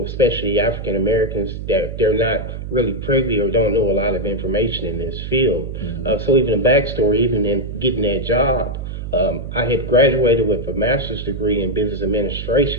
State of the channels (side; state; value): right; noise; hum, 7 dB below the sound